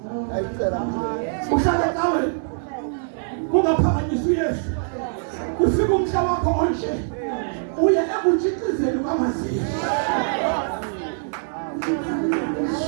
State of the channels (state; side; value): silent; left; digital silence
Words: uhlala nawe kungaphakanyiswa uYesu ufika umhla wakho onje uye ekutshixizeni kwamaziko